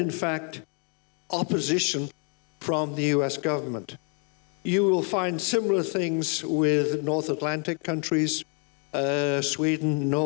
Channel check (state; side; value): quieter; right; 37.5 dB